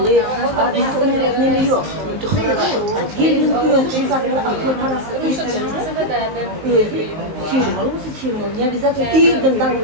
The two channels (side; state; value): left; late; 19 ms